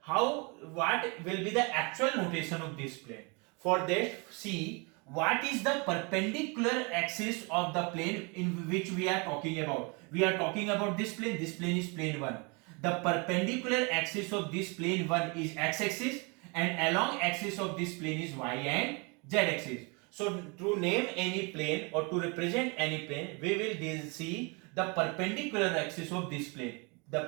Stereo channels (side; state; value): left; quieter; 30.5 dB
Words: what will be the actual notation of this plane. For that, see what is the perpendicular axis of the plane in which we are talking about. We are talking about this plane is plane 1. The perpendicular axis of this plane 1 is x-axis, and along axis of this plane is y and z-axis. So to name any plane or to represent any plane, we will see the perpendicular axis of this plane. The